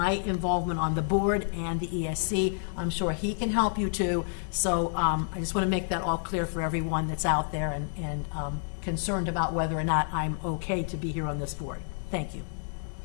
involvement on the board and the ESC, I'm sure he can help you too. So I just want to make that all clear for everyone that's out there and concerned about whether or not I'm okay to be here on this board. Thank you.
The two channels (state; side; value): silent; right; 59 dB below the other